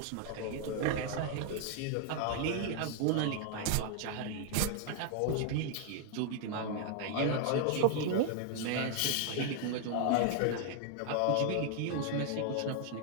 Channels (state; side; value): different; both; correlation 0.00